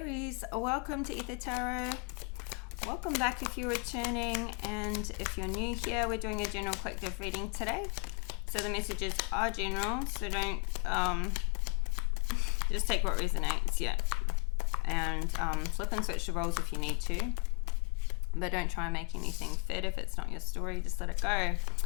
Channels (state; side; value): quieter; right; 34.1 dB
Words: welcome to Ether Tarot. Welcome back if you're returning, and if you're new here, we're doing a general collective reading today. So the messages are general, so don't just take what resonates, and flip and switch the roles if you need to, but don't try and make anything fit. If it's not your story, just let it go.